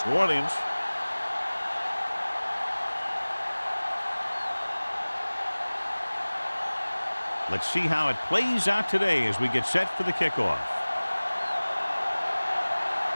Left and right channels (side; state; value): both; inverted; correlation -1.00